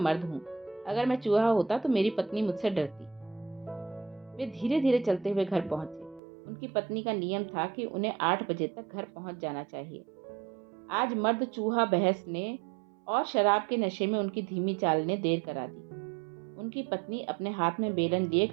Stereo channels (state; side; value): drops out; left; at 6.2 s